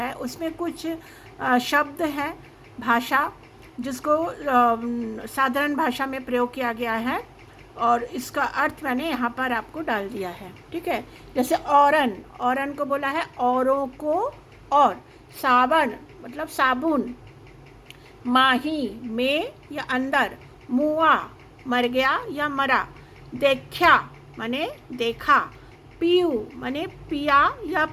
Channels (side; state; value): both; identical; correlation 1.00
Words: उसमें कुछ शब्द हैं, भाषा जिसको साधारण भाषा में प्रयोग किया गया है और इसका अर्थ मैंने यहाँ पर आपको डाल दिया है। ठीक है, जैसे औरन, औरन को बोला है औरों को, और सावन मतलब साबुन, माही में या अंदर, मुआ मर गया या मरा, देखा माने देखा, पीयू माने पिया या